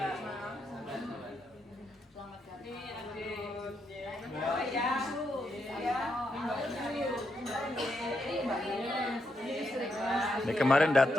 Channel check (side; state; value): both; normal; correlation 0.81